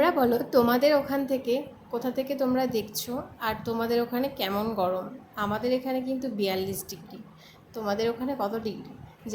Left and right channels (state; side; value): identical; both; correlation 1.00